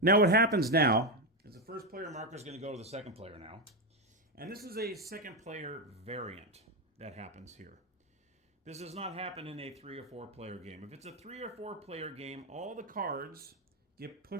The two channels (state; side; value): normal; both; correlation 0.09